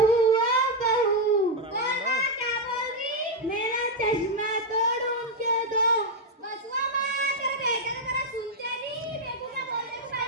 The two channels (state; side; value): normal; both; correlation 0.01